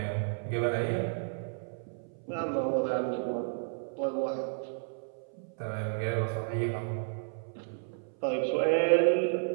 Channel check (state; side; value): silent; left; 56 dB below the other